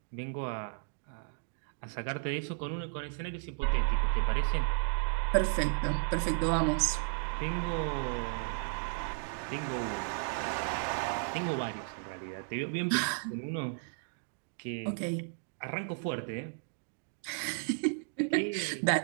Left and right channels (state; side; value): silent; left; digital silence